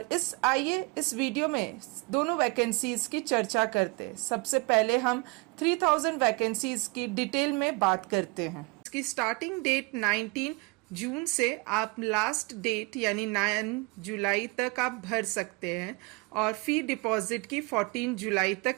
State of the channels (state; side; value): quieter; left; 26.9 dB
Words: आइए इस वीडियो में दोनों वैकेंसीज की चर्चा करते हैं। सबसे पहले हम 3000 वैकेंसीज की डिटेल में बात करते हैं। इसकी स्टार्टिंग डेट 19 जून से आप लास्ट डेट यानी 9 जुलाई तक आप भर सकते हैं, और फी डिपॉजिट की 14 जुलाई तक